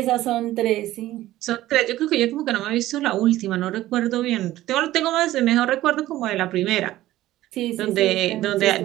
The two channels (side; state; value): left; quieter; 15.3 dB